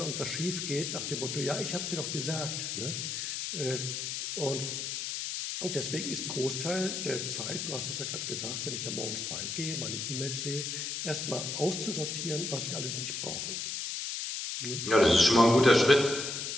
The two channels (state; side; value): noise; left; hiss, 4 dB below the sound